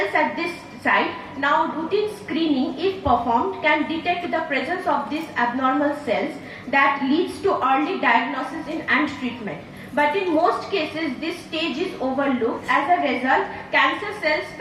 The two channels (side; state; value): both; identical; correlation 1.00